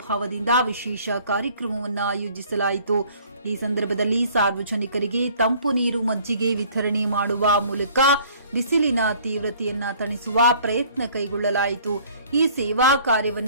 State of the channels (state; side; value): inverted; both; correlation -0.55